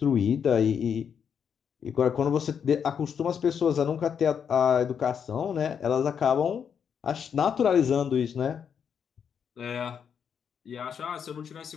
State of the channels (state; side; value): quieter; right; 7.4 dB